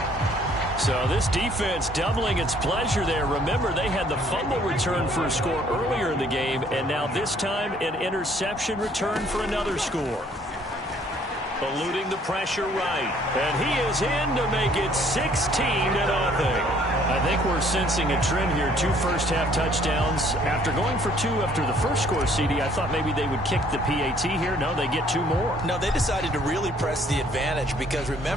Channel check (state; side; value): normal; both; correlation 0.61